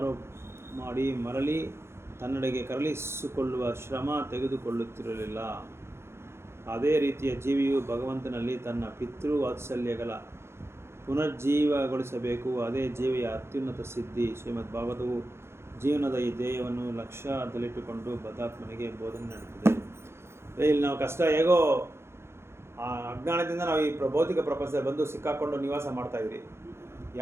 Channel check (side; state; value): left; late; 0.12 ms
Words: ಮಾಡಿ ಮರಳಿ ತನ್ನೆಡೆಗೆ ಕರಳಿಸಿಕೊಳ್ಳುವ ಶ್ರಮ ತೆಗೆದುಕೊಳ್ಳುತ್ತಿರಲಿಲ್ಲ. ಅದೇ ರೀತಿಯ ಜೀವಿಯು ಭಗವಂತನಲ್ಲಿ ತನ್ನ ಪಿತೃವಾತ್ಸಲ್ಯಗಳ ಪುನರ್ಜೀವಗೊಳಿಸಬೇಕು. ಅದೇ ಜೀವಿಯ ಅತ್ಯುನ್ನತ ಸಿದ್ಧಿ. ಶ್ರೀಮದ್ ಭಾಗವತವು ಜೀವನದ ಈ ಧ್ಯೇಯವನ್ನು ಲಕ್ಷ್ಯದಲ್ಲಿಟ್ಟುಕೊಂಡು ಬದ್ಧಾತ್ಮನಿಗೆ ಬೋಧನೆ ನಡೆಯುತ್ತದೆ. ಇಲ್ಲಿ ನಾವು ಕಷ್ಟ ಹೇಗೋ ಅಜ್ಞಾನದಿಂದ ನಾವು ಈ ಭೌತಿಕ ಪ್ರಪಂಚದಲ್ಲಿ ಬಂದು ಸಿಕ್ಕಾಕೊಂಡು ನಿವಾಸ ಮಾಡ್ತಾಯಿದ್ರಿ.